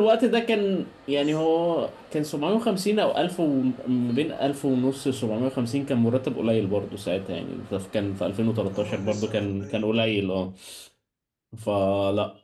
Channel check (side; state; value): both; identical; correlation 1.00